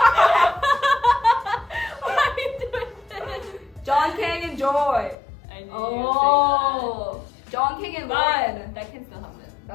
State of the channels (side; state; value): right; drops out; at 5.2 s